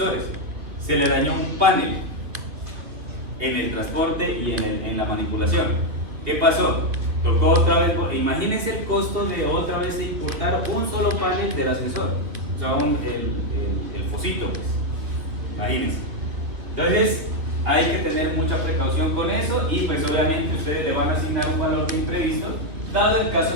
Se le dañó un panel en el transporte y en la manipulación. ¿Qué pasó? Tocó otra vez, imagínense el costo de otra vez importar un solo panel del ascensor, o sea, el fosito, pues. Imagínense. Entonces, hay que tener mucha precaución con eso y pues obviamente ustedes le van a asignar un valor de imprevisto, dado el caso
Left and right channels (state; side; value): late; left; 3.3 ms